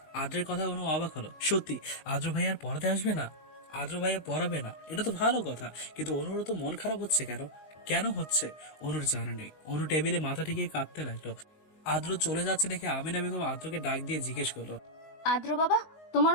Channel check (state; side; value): late; right; 19 ms